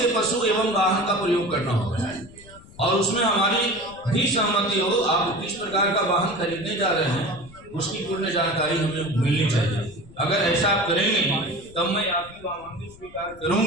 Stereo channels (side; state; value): left; noise; rumble, 21 dB below the sound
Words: पशु एवं वाहन का प्रयोग करना होगा और उसमें हमारी भी सहमति हो। आप किस प्रकार का वाहन खरीदने जा रहे हैं उसकी पूर्ण जानकारी हमें मिलनी चाहिए। अगर ऐसा आप करेंगे तब मैं आपकी वामांगी स्वीकार